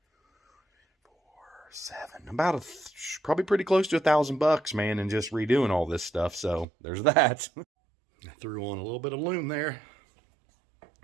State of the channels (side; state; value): left; drops out; at 6.7 s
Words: 4, 7, about probably pretty close to $1,000, man, and just redoing all this stuff. So there's that. I threw on a little bit of loom there.